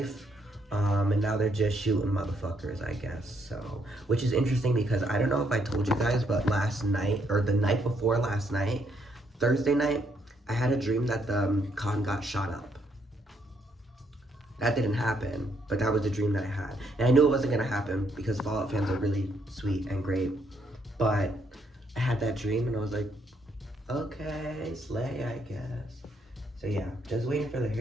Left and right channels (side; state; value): both; normal; correlation 0.73